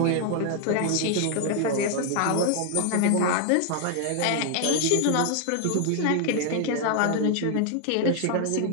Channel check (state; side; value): different; both; correlation 0.00